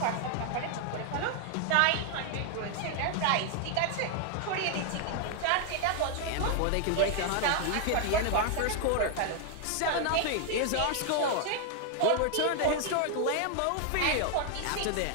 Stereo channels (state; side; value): different; both; correlation 0.00